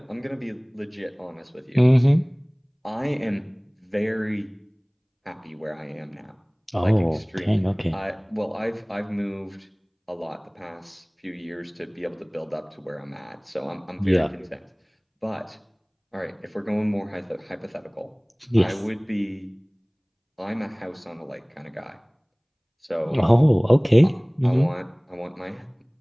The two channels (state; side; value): identical; both; correlation 1.00